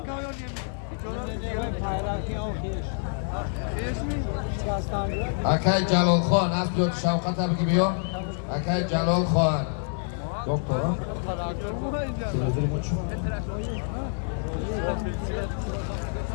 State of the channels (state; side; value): silent; right; 60 dB below the other